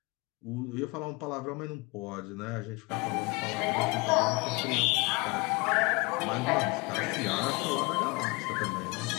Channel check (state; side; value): quieter; right; 26.5 dB